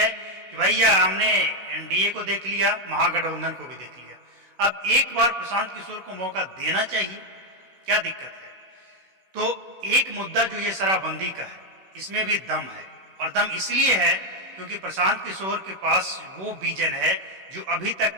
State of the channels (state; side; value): late; left; 16 ms